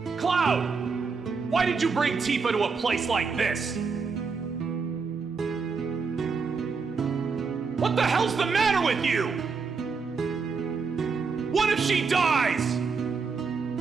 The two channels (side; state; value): left; quieter; 5.0 dB